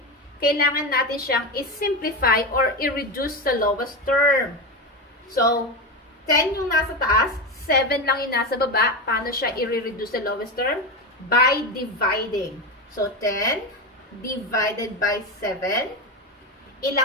kailangan natin siyang i-simplify or i-reduce sa lowest term. So, 10 yung nasa taas, 7 lang yung nasa baba. Paano siya i-reduce sa lowest term? By dividing. So, 10 divided by 7.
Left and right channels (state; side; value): normal; both; correlation 0.16